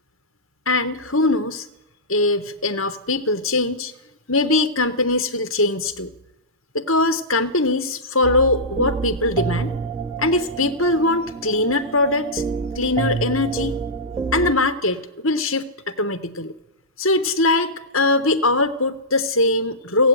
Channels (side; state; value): both; normal; correlation -0.13